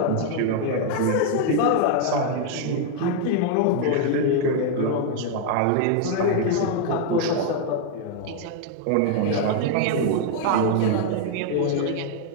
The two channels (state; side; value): different; both; correlation 0.00